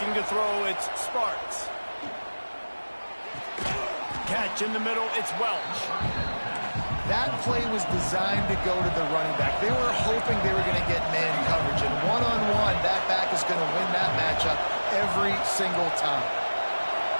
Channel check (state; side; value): inverted; both; correlation -1.00